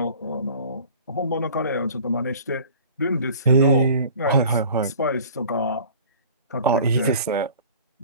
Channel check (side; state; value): both; inverted; correlation -0.46